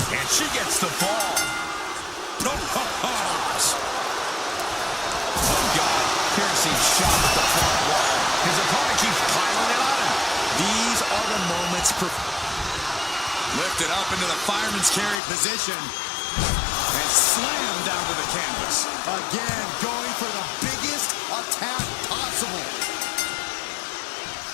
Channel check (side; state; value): right; drops out; at 15.2 s